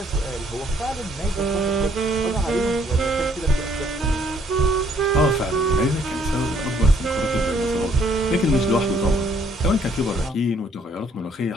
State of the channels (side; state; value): both; normal; correlation 0.65